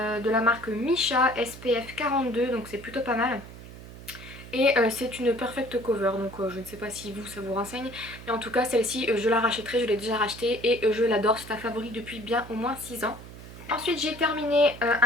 la marque Misha SPF 42, donc c'est plutôt pas mal. Et c'est une perfect cover, donc je ne sais pas si vous ça vous renseigne, mais en tout cas celle-ci je la rachèterai, je l'ai déjà rachetée et je l'adore, c'est un favori depuis bien au moins 6 ans. Ensuite j'ai terminé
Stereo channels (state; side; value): noise; right; hum, 15 dB below the sound